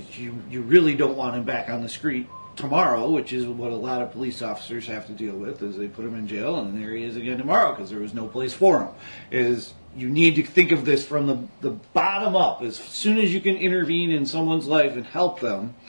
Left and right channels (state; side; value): inverted; both; correlation -1.00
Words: really don't want him back on the street tomorrow, which is what a lot of police officers have to deal with, is they put him in jail, and there he is again tomorrow because there was no place for him. You need to think of this from the bottom up. As soon as you can intervene in someone's life and help them,